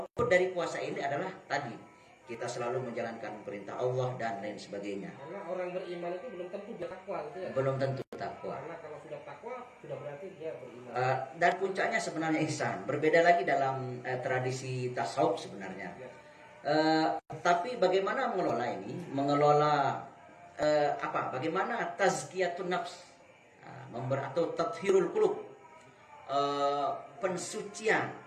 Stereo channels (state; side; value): identical; both; correlation 1.00